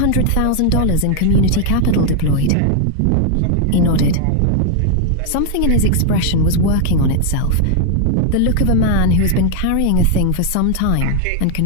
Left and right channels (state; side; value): different; both; correlation 0.00